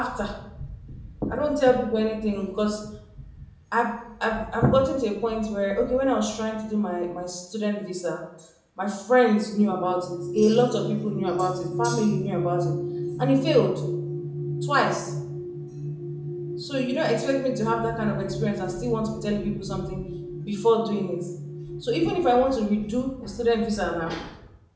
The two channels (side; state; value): both; identical; correlation 1.00